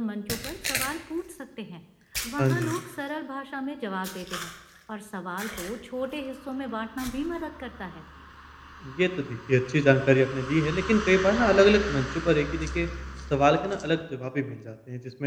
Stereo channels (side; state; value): both; identical; correlation 1.00